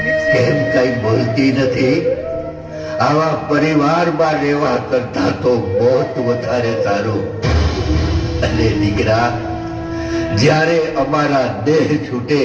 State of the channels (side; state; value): both; identical; correlation 1.00